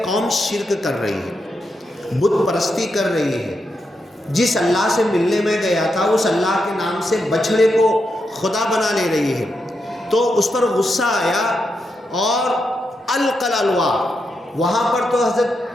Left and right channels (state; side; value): normal; both; correlation 0.84